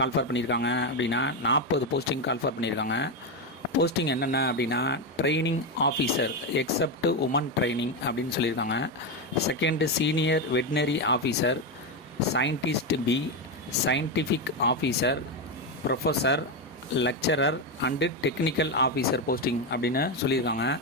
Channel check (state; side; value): normal; both; correlation 0.10